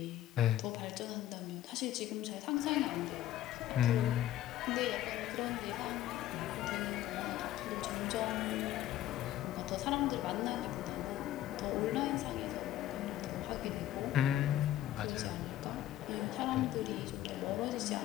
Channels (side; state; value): right; quieter; 13.1 dB